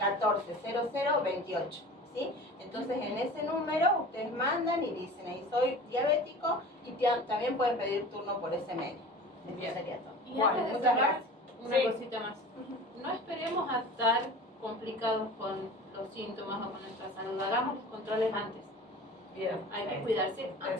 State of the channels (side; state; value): both; normal; correlation 0.39